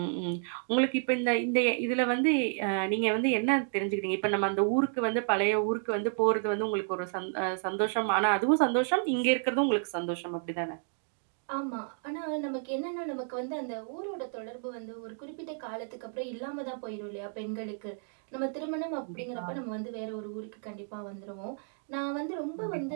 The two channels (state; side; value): silent; left; 57 dB below the other